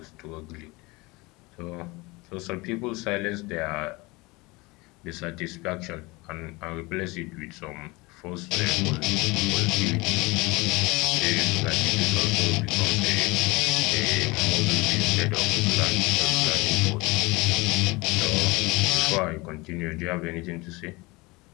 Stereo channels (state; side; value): quieter; right; 23.9 dB